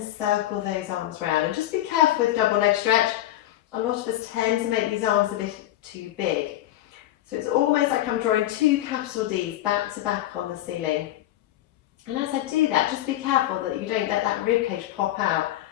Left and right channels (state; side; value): quieter; right; 14.1 dB